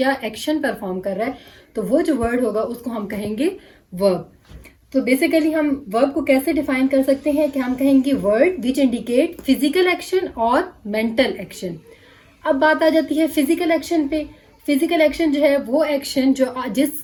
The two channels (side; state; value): both; identical; correlation 1.00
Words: एक्शन परफॉर्म कर रहा है, तो वो जो वर्ड होगा उसको हम कहेंगे वर्ब। तो बेसिकली हम वर्ब को कैसे डिफाइन कर सकते हैं कि हम कहेंगे word which indicate physical action और मेंटल एक्शन। अब बात आ जाती है फिजिकल एक्शन पे। फिजिकल एक्शन जो है वो एक्शन जो